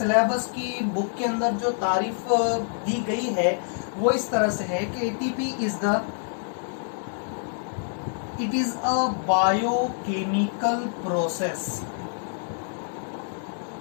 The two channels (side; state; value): right; silent; digital silence